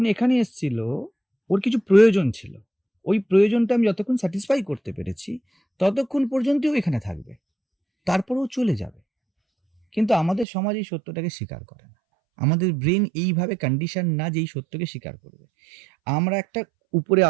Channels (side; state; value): left; drops out; at 10.5 s